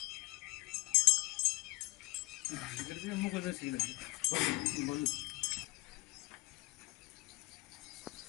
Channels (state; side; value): quieter; right; 22.0 dB